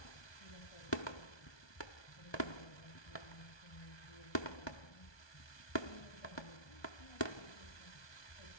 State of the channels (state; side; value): late; right; 1.2 ms